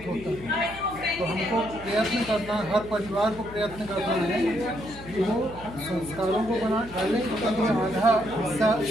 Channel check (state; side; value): noise; left; hum, 16 dB below the sound